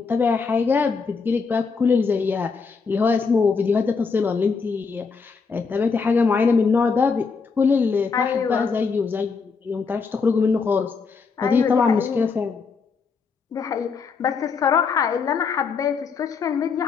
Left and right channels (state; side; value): quieter; right; 5.1 dB